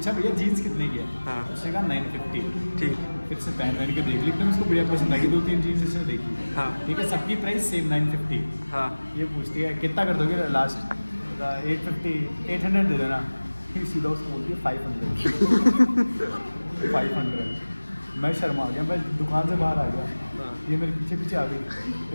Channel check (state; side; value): inverted; both; correlation -1.00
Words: भैया जीन्स कितने की है? हाँ। उसने कहा 950। ठीक। फिर से पहन के देख ली, तो उसको बढ़िया पसंद आई। 2-3 जीन्स इसने देखी। हाँ। ठीक है, सबकी प्राइस सेम 950। हाँ। ये पूछती है कितना कर दोगे लास्ट? 800 दे देना। फिर सीधा उसको बोलती है 500। 500। मैं शर्मा गया, मैं दुकान से बाहर आ गया। ये मेरे पीछे पीछे आ गई।